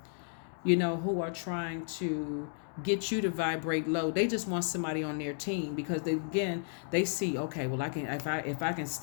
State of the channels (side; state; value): right; silent; digital silence